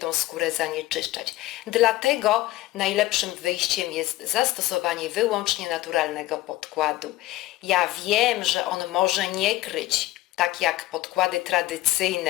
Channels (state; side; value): quieter; right; 17.1 dB